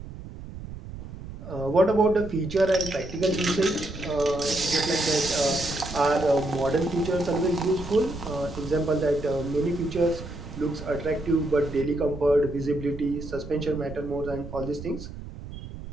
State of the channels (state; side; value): noise; right; rumble, 12 dB below the sound